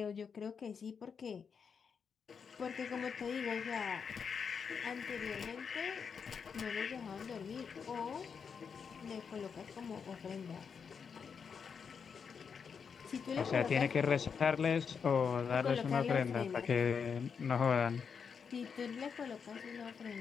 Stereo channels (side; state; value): right; quieter; 6.3 dB